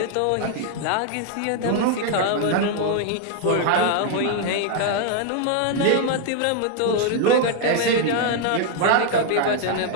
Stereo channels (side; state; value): both; different; correlation 0.00